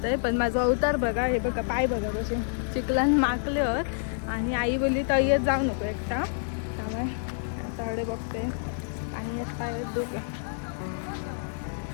आहे पण माझा अवतार बघा हे बघा पाय बघा कसे चिखलान माकल्यावर आणि आई बोलली तय्यत जाऊ नको एकटा त्यामुळे आता त्यांच्याकडे बघते. पाणी येत पाय डोके.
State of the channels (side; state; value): right; silent; digital silence